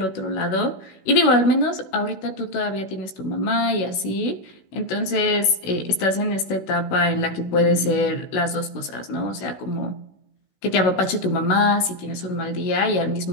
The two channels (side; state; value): right; late; 16 ms